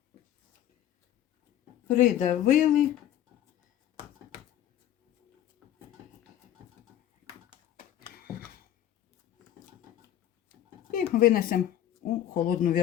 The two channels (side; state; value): right; quieter; 11.6 dB